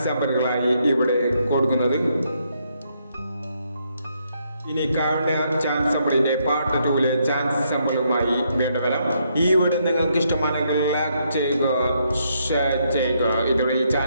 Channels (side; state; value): both; inverted; correlation -0.75